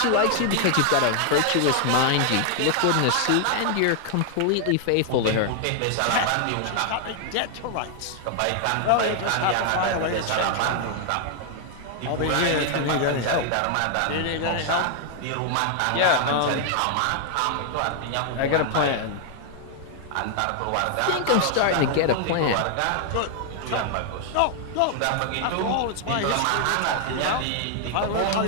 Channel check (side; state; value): both; different; correlation 0.00